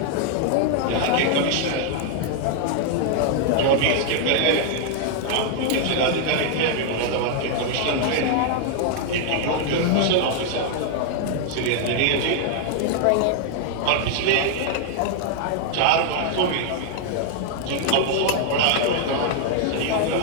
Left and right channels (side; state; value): both; different; correlation 0.00